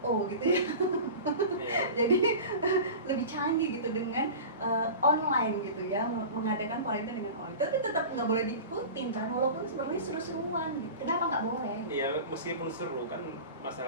gitu ya. Jadi lebih canggih gitu dengan online gitu ya, mengadakan Valentine dengan online. Tapi tetap nggak boleh diikutin kan, walaupun sebenarnya seru-seruan gitu. Kenapa nggak boleh? Iya, meskipun seru kan,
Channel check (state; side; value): inverted; both; correlation -0.34